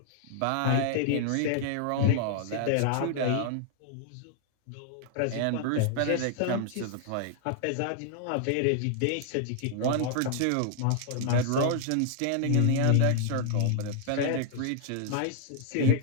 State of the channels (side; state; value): both; different; correlation -0.01